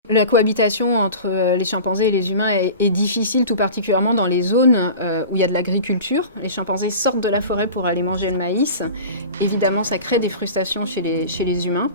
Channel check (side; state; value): both; inverted; correlation -0.36